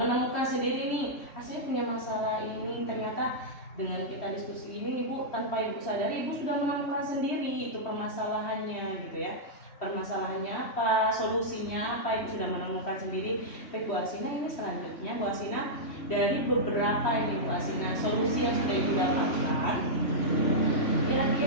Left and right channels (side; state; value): right; late; 3.1 ms